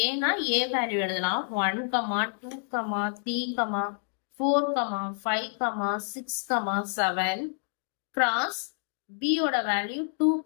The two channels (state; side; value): silent; right; digital silence